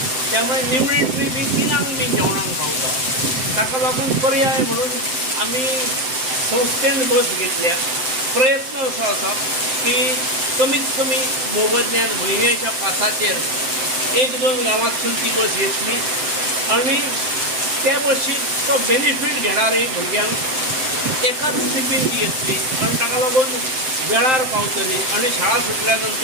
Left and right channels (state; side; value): late; left; 7.7 ms